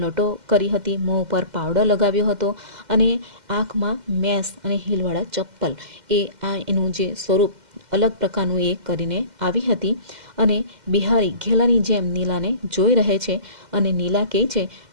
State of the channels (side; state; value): left; late; 2.1 ms